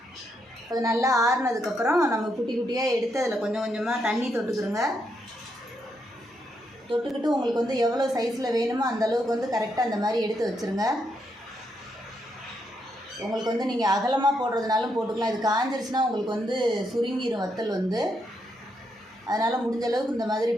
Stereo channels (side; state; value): both; normal; correlation 0.79